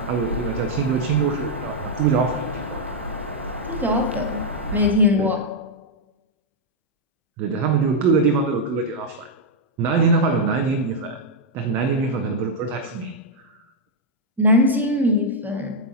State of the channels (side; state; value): both; normal; correlation -0.03